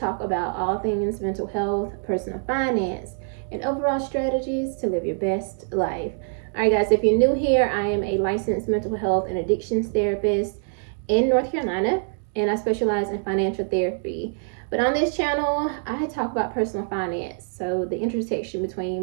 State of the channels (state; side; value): silent; left; digital silence